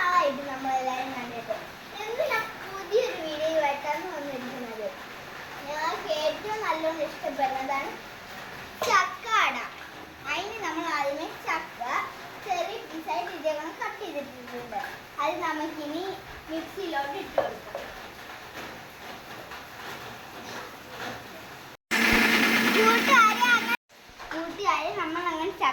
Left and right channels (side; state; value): both; identical; correlation 1.00